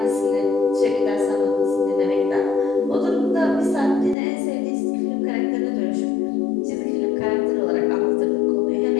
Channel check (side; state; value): right; drops out; at 4.2 s